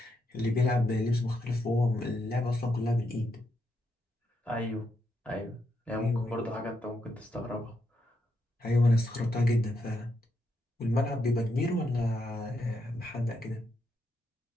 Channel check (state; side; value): normal; both; correlation 0.80